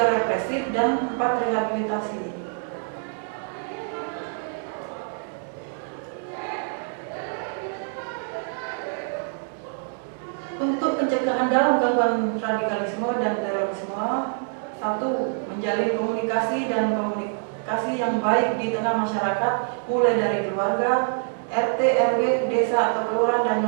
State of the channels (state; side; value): silent; left; 61 dB below the other